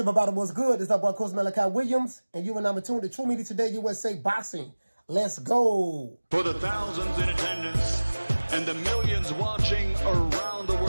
What's good? It's our boy, Coach Malachi Williams, and you and I'm tuned to True Media Today USA Boxing. Let's go. For the thousands in attendance and the millions watching around the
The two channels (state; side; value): inverted; both; correlation -1.00